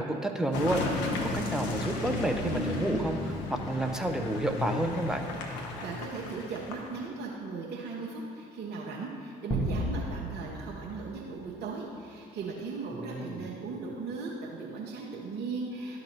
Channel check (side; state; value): both; normal; correlation 0.59